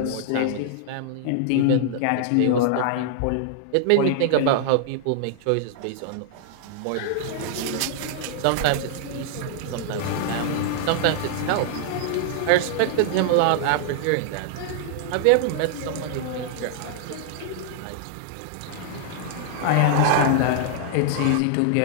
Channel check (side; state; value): both; different; correlation -0.01